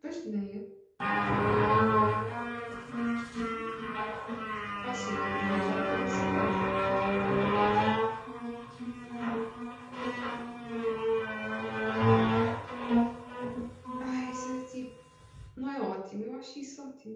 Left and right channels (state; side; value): identical; both; correlation 1.00